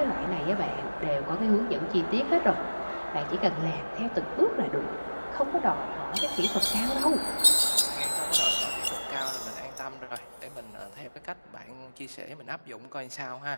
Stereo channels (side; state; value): both; inverted; correlation -1.00